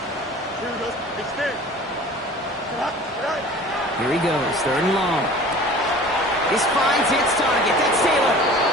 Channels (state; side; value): normal; both; correlation 0.43